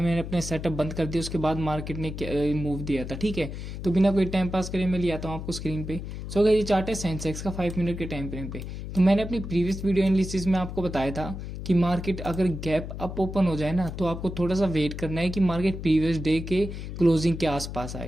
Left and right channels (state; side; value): noise; left; hum, 8 dB below the sound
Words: अपने सेटअप बंद कर दिया उसके बाद मार्केट ने मूव दिया था। ठीक है, तो बिना कोई टाइम पास करे मैं लिया था आपको स्क्रीन पे। सो गए ये चार्ट है सेंसेक्स का 5 मिनट के टाइम फ्रेम पे। तो मैंने अपनी प्रीवियस वीडियो एनालिसिस में आपको बताया था कि मार्केट अगर गैप अप ओपन हो जाए ना तो आपको थोड़ा सा वेट करना है कि मार्केट प्रीवियस डे के क्लोजिंग के आसपास